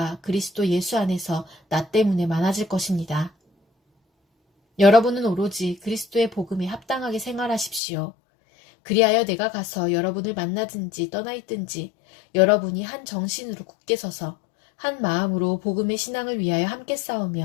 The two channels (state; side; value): drops out; right; at 7.8 s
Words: 그리스도 예수 안에서 나 때문에 많아질 것입니다. 여러분은 오로지 그리스도의 복음에 합당하게 생활하십시오. 그리하여 내가 가서 여러분을 만나든지 떠나 있든지 여러분이 한 정신으로 굳게 서서 한 마음으로 복음의 신앙을 위하여 함께